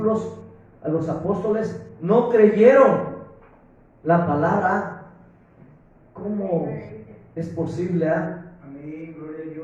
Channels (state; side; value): identical; both; correlation 1.00